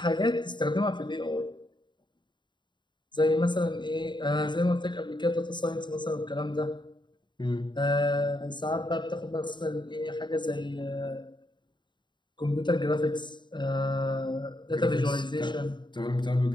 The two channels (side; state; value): right; late; 0.22 ms